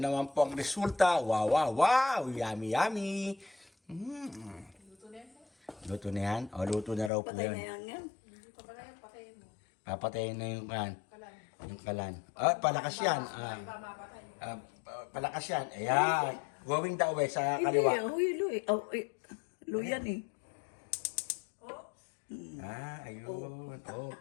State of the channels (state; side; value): drops out; right; at 7.1 s